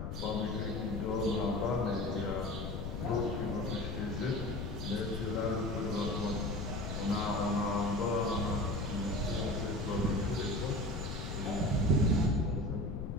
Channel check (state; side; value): noise; left; rumble, 5 dB below the sound